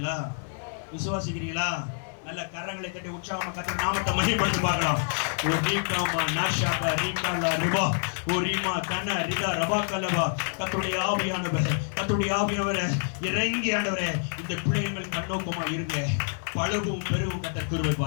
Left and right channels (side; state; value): right; silent; 60 dB below the other